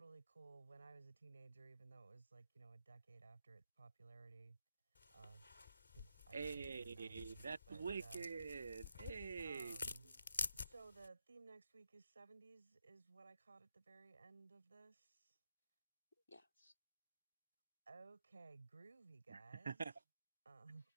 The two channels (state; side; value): inverted; both; correlation -0.83